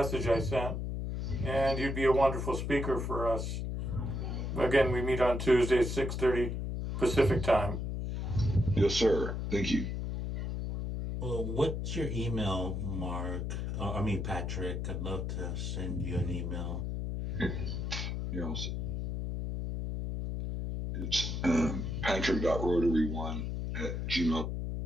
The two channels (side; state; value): left; noise; hum, 3 dB below the sound